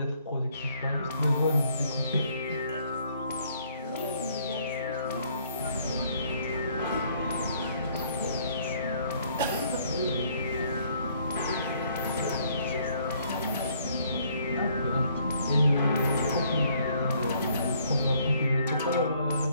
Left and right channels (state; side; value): inverted; both; correlation -0.65